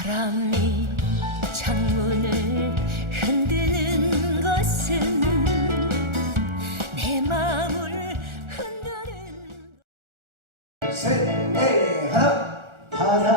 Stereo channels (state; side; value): late; left; 1.4 ms